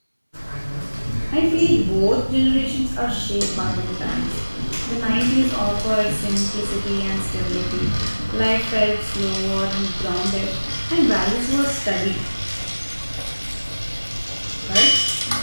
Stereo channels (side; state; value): both; inverted; correlation -1.00